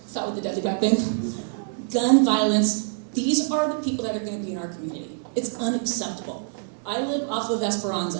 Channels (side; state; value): left; silent; digital silence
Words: deadly weapon, gun violence. These are the people that are going to be in our community. It's unacceptable. I live off of